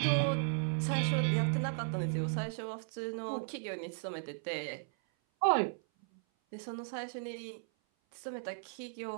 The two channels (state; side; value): silent; left; 54 dB below the other